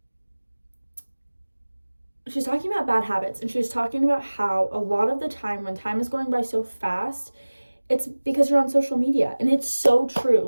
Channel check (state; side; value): inverted; both; correlation -1.00